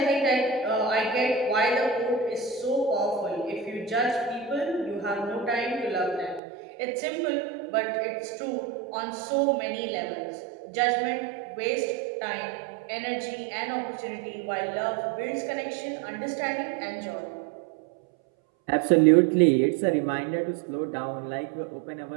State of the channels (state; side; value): drops out; left; at 6.4 s